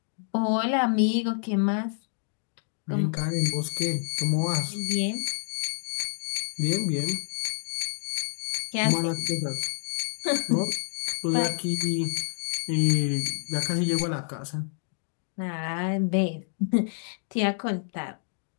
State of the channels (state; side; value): silent; right; digital silence